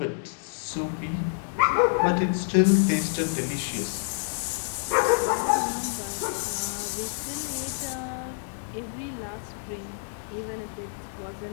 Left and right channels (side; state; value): right; silent; digital silence